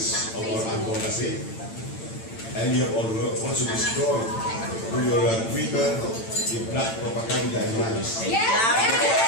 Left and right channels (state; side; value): late; right; 8.9 ms